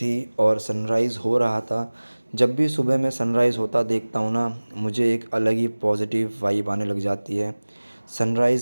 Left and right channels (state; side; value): inverted; both; correlation -1.00